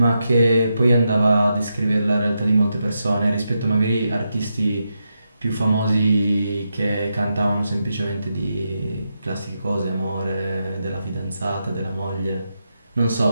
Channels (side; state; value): both; inverted; correlation -0.85